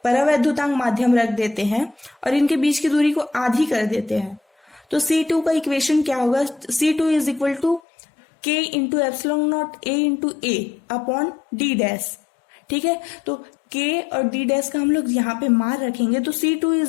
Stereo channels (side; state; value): right; drops out; at 7.8 s